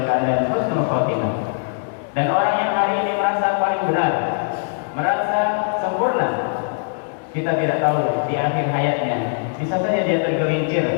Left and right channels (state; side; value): silent; right; digital silence